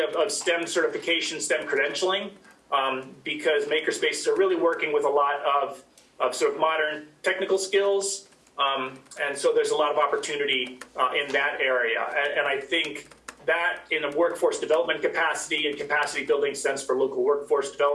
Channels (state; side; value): identical; both; correlation 1.00